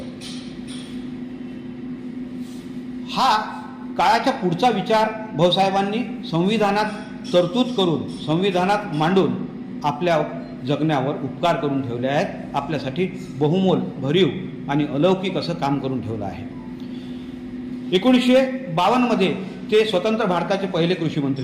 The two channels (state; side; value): identical; both; correlation 1.00